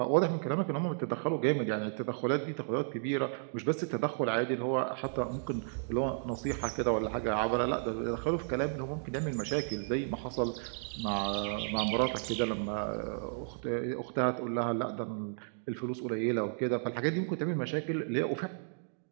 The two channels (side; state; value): left; silent; digital silence